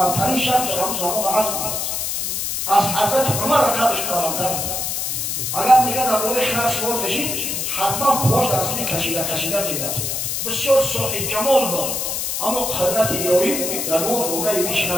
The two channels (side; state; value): left; noise; hiss, 1 dB below the sound